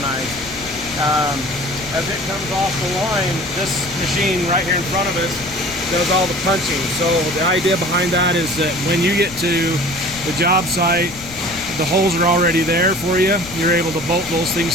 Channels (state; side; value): noise; left; rumble, 17 dB below the sound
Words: As it comes off the line, this machine right here in front of us does all the punching. So the idea behind that is that when you get to the job site, the holes are already there for you. You're able to bolt those